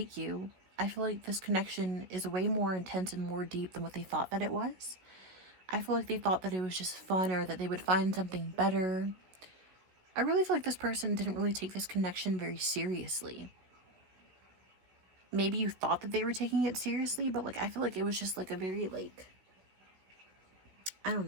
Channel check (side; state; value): left; late; 16 ms